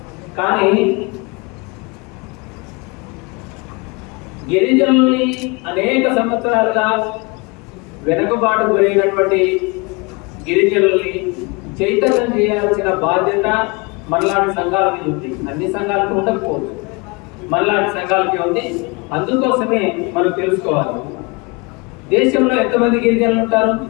కానీ గిరిజనుల్ని అనేక సంవత్సరాలుగా వెనుకబాటు గురైనటువంటి గిరిజనుల్ని చైతన్యం చేయాల్సిన బాధ్యత మనలాంటి సంఘాల మీద ఉంది. అన్ని సంఘాలకు ఉండకపోవచ్చు, మనలాంటి సంఘాలకి ఉంది. అందుకోసమే మనం తెలుసుకోవాలి, దేశంలో ఎంతమంది గిరిజనులు ఉంటారు.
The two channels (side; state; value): right; quieter; 28.2 dB